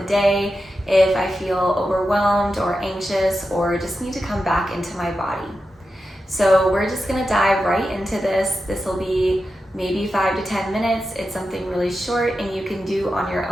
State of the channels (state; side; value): normal; both; correlation 0.90